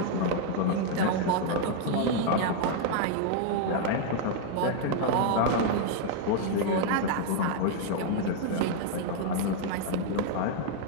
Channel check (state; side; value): different; both; correlation 0.00